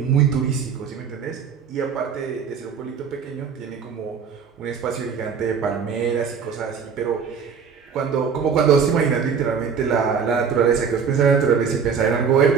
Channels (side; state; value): left; quieter; 6.4 dB